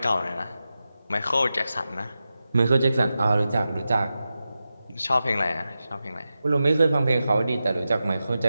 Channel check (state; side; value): inverted; both; correlation -0.92